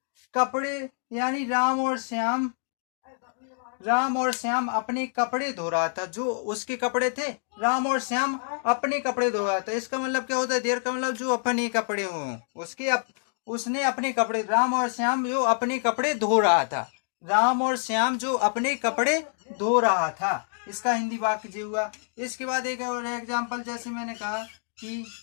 कपड़े, यानी राम और श्याम अपने कपड़े धो रहा था, जो उसके कपड़े थे, राम और श्याम अपने कपड़े धो रहा था। इसका मतलब क्या होता है, देर का मतलब जो अपने कपड़े हों, उसने अपने कपड़े, राम और श्याम जो अपने कपड़े धो रहा था, राम और श्याम जो अपने कपड़े धो रहा था, इसका हिंदी वाक्य जी हुआ। इसके बाद एक और एग्जाम्पल, जैसे मैंने कहा कि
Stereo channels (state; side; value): silent; right; digital silence